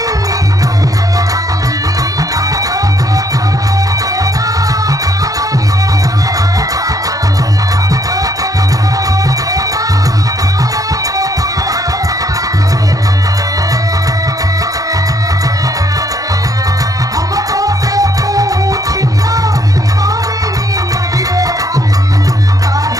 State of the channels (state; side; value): late; left; 0.17 ms